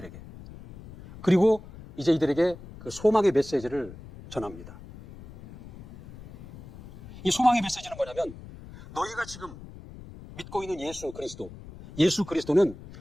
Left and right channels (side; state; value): left; noise; rumble, 17 dB below the sound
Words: 그리고 이제 이들에게 그 소망의 메시지를 전합니다. 이 소망의 메시지는 뭐냐면 너희가 지금 믿고 있는 예수 그리스도는